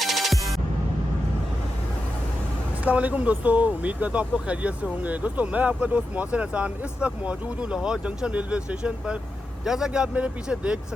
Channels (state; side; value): normal; both; correlation 0.89